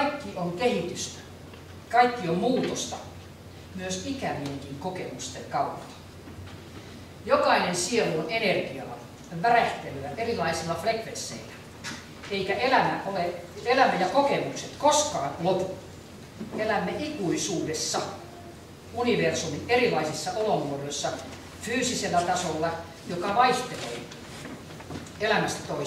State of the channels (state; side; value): identical; both; correlation 1.00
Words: on kehitystä, kaikki on muutosta, myös ikävienkin kokemusten kautta. Jokainen sielu on energiaa, värähtelyä erilaisilla frekvensseillä, eikä elämä ja kokemukset koskaan lopu. Elämme ikuisuudessa universumin erilaisissa olomuodoissa fyysisellä tasolla, joka vaihtelee elämästä